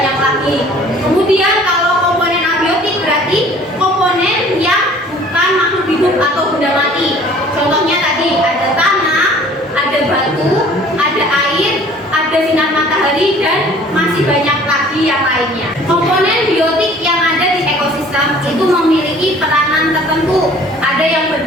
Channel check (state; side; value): normal; both; correlation 0.51